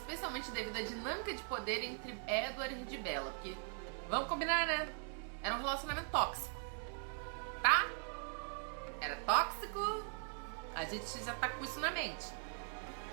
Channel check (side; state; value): left; silent; 51 dB below the other